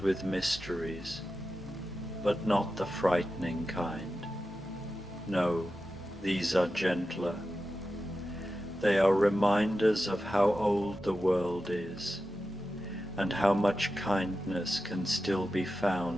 mysteries, but not the frightening kind. No, these are gentler. They are reminders of how old the world is, and how much kindness can still be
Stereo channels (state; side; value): normal; both; correlation 0.92